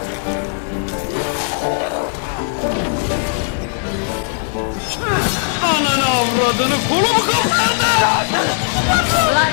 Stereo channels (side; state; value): right; silent; 59 dB below the other